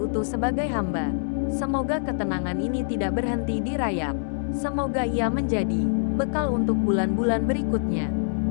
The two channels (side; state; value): right; silent; digital silence